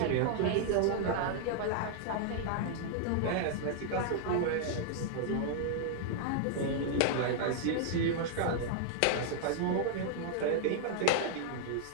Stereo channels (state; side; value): different; both; correlation -0.01